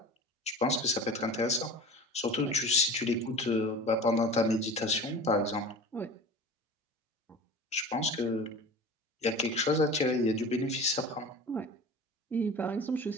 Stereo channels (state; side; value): normal; both; correlation 0.36